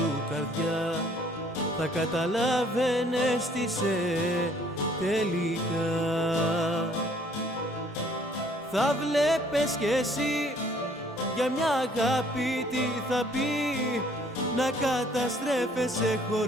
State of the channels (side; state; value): both; normal; correlation 0.60